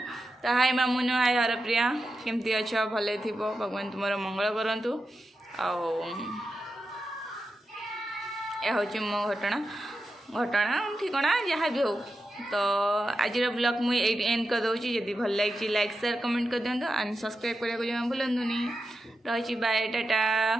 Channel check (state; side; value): normal; both; correlation 0.89